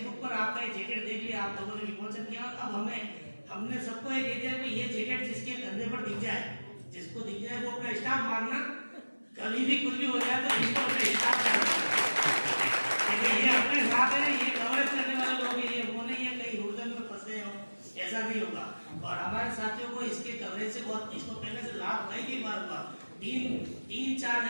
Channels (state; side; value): inverted; both; correlation -1.00